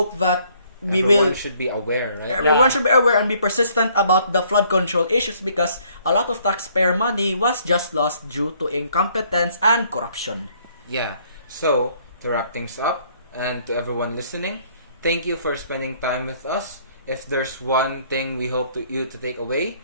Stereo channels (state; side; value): inverted; both; correlation -0.63